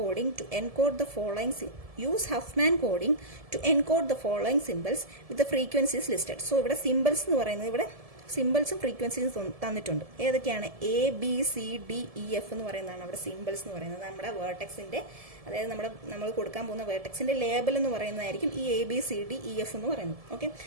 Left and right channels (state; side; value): late; left; 1.7 ms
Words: to encode the following use Huffman coding to encode the following symbols with frequencies listed. So ഇവിടെ സിമ്പിൾസ് എന്ന് പറയുന്നത് ഇവിടെ സിമ്പിൾസും ഫ്രീക്വൻസീസും തന്നിട്ടുണ്ട്. ഏതൊക്കെയാണ്? ABCDEF എന്ന് പറയുന്നതാണ് അവിടെ സിമ്പിൾസ് എന്ന് പറയുന്നത്. നമ്മുടെ വേർട്ടെക്സിന്റെ അതായത് നമ്മൾ കൊടുക്കാൻ പോകുന്ന വേർട്ടെക്സിന്റെ ലേബൽ എന്ന് പറയുന്നതായിരിക്കും ഈ ABCDEF എന്ന് പറയുന്നത്. ഓക്കെ,